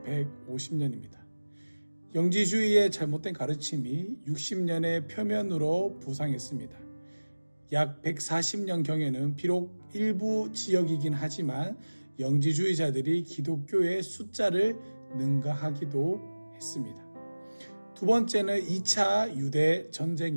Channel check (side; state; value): both; inverted; correlation -1.00